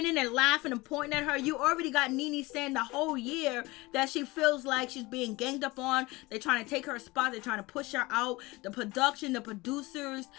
and laughing and pointing at her. You already got Nene saying the whole year that she feels like she's being ganged up on. They're trying to take her spot. They're trying to push her out. The production, the producers,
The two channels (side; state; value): right; quieter; 22.0 dB